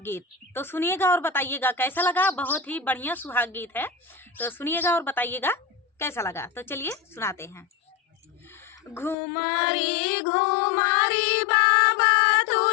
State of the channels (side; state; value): right; drops out; at 9.2 s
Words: गीत। तो सुनिएगा और बताइएगा कैसा लगा। बहुत ही बढ़िया सुहाग गीत है, तो सुनिएगा और बताइएगा कैसा लगा। तो चलिए सुनाते हैं। घुमारी घुमारी बाबा